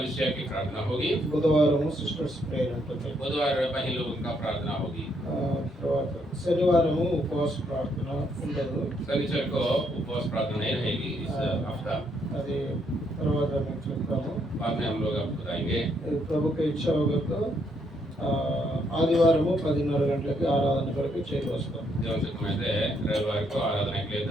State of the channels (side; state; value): both; normal; correlation 0.73